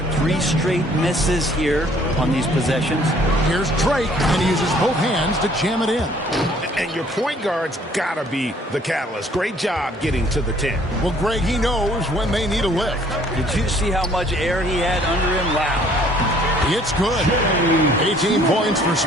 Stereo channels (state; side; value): normal; both; correlation 0.59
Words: 3 straight misses here on these possessions. Here's Drake, and he uses both hands to jam it in. And your point guard's got to be the catalyst. Great job getting to the 10. Well, Greg, he knows when they need a lift. Did you see how much air he had under him? Wow. It's good. 18 points for